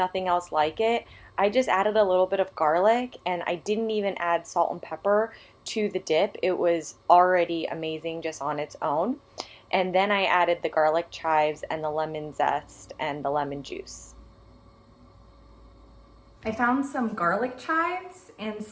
else like it. I just added a little bit of garlic and I didn't even add salt and pepper to the dip. It was already amazing just on its own. And then I added the garlic chives and the lemon zest and the lemon juice. I found some garlic chives and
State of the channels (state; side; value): identical; both; correlation 1.00